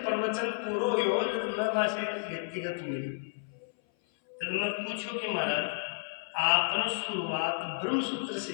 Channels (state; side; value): silent; right; 57 dB below the other